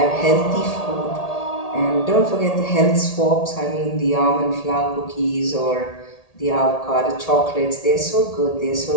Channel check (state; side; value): late; right; 1.8 ms